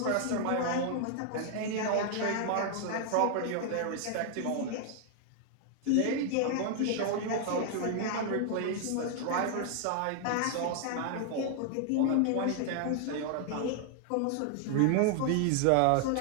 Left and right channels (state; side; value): different; both; correlation 0.00